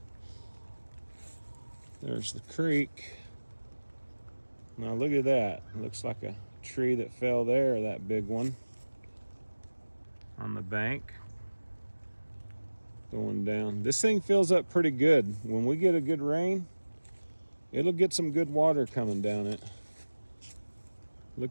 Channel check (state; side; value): inverted; both; correlation -1.00